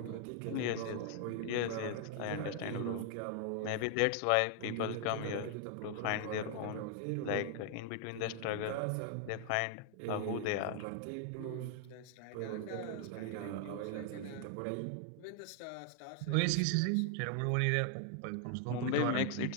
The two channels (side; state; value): both; different; correlation 0.00